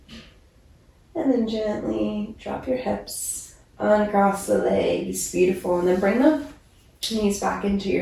And then gently drop your hips, uncross the legs, beautiful. And then bring the knees back into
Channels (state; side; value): identical; both; correlation 1.00